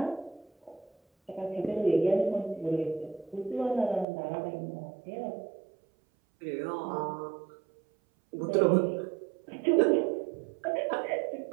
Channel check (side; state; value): left; drops out; at 4.0 s